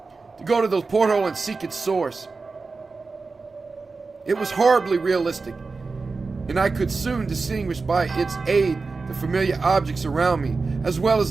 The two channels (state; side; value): quieter; left; 4.1 dB